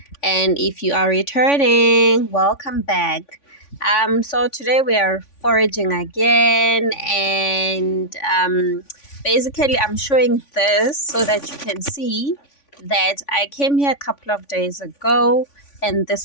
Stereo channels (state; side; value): late; right; 3.5 ms